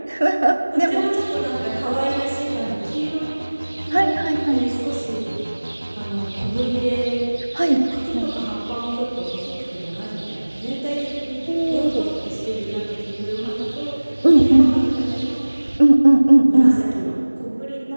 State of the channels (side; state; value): both; inverted; correlation -1.00